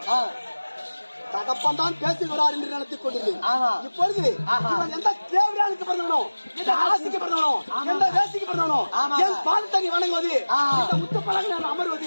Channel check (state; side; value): inverted; both; correlation -1.00